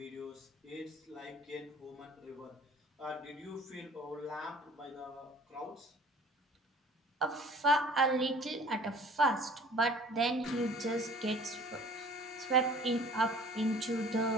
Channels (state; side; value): normal; both; correlation 0.49